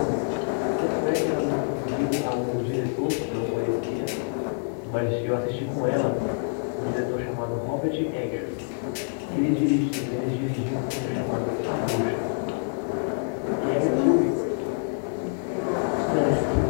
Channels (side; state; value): right; silent; digital silence